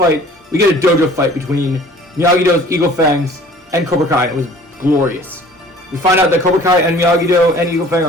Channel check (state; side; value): normal; both; correlation 0.50